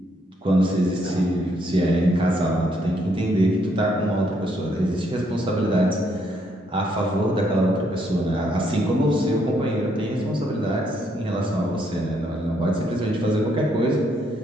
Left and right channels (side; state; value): both; normal; correlation 0.72